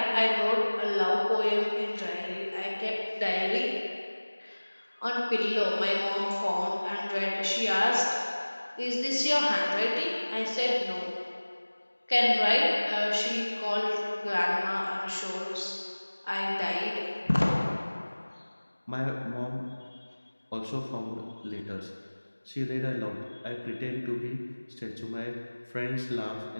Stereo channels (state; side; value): inverted; both; correlation -1.00